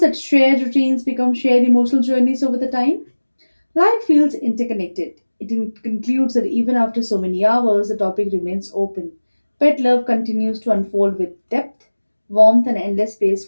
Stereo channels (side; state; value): both; inverted; correlation -1.00